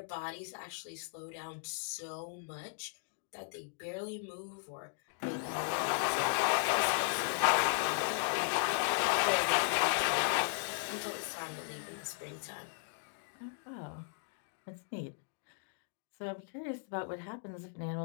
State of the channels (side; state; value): right; silent; digital silence